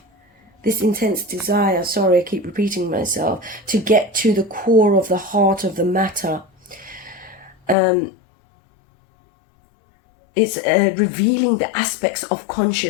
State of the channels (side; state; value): right; drops out; at 7.8 s